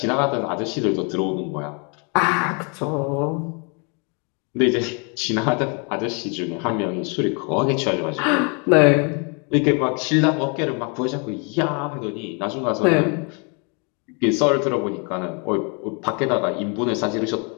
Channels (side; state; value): right; quieter; 35.2 dB